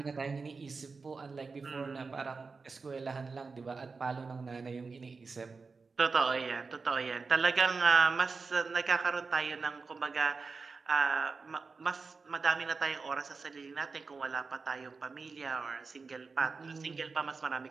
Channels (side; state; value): left; quieter; 4.5 dB